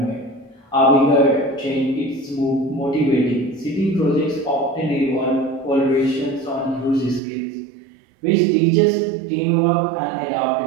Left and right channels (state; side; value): drops out; left; at 7.2 s